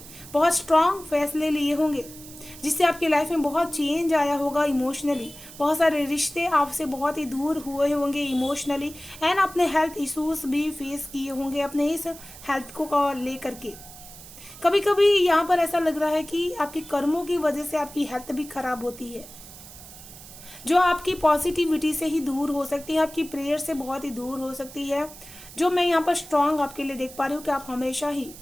बहुत स्ट्रांग फैसले लिए होंगे, जिससे आपकी लाइफ में बहुत चेंज आया होगा इमोशनली। बहुत सारे रिश्ते आपसे बहुत ही दूर हुए होंगे इमोशनली। एंड अपने हेल्थ इश्यूज भी फेस किए होंगे अपने इस हेल्थ को लेकर के। कभी कभी यहाँ पर ऐसा लग रहा है कि आपके कर्मों की वजह से आपकी हेल्थ भी खराब होती है। जो आपकी पॉजिटिविटी से ही दूर हो सकती है, आपकी प्रेयर से बहुत ही दूर हो सकती है। जो मैं यहाँ पर स्ट्रांग आपके लिए देख पा रही हूँ कि आप हमेशा ही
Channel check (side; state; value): right; noise; hiss, 17 dB below the sound